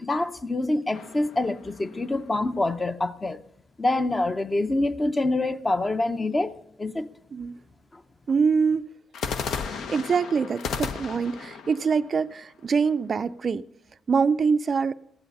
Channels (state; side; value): normal; both; correlation 0.87